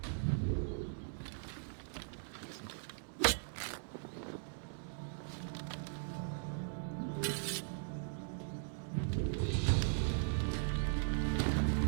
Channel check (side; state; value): left; silent; digital silence